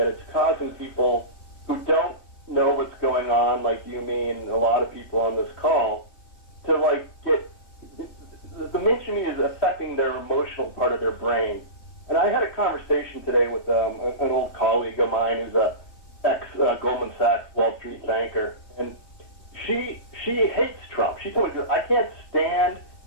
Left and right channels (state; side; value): late; right; 3.2 ms